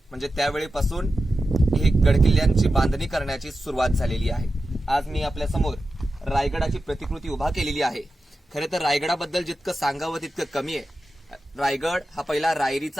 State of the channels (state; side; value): normal; both; correlation 0.92